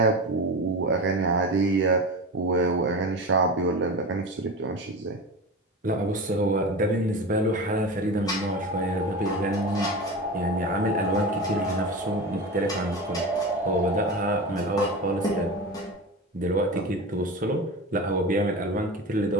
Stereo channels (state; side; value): normal; both; correlation 0.27